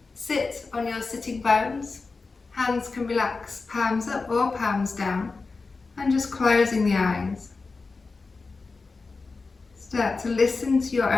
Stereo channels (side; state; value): right; quieter; 4.1 dB